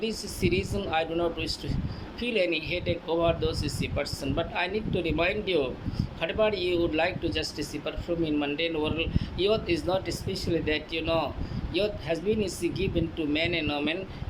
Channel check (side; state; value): both; identical; correlation 1.00